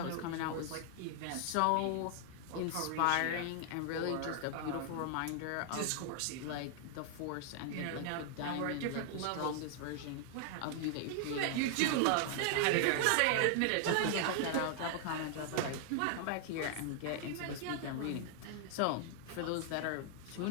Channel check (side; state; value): both; different; correlation 0.00